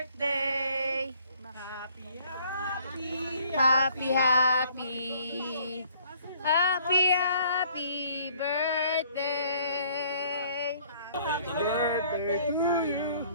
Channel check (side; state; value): both; inverted; correlation -0.60